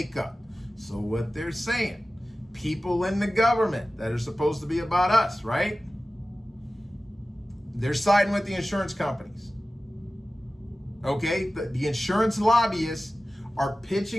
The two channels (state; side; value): normal; both; correlation 0.96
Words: So what they're saying, people in the government that are supposed to be about us, right? They're siding with the insurance companies. Okay, the insurance lobbyists are